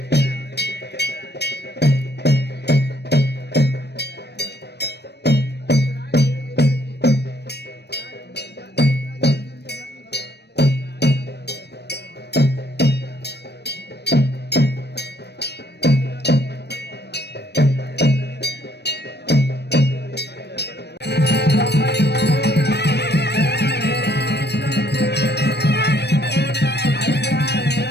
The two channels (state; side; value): late; right; 0.49 ms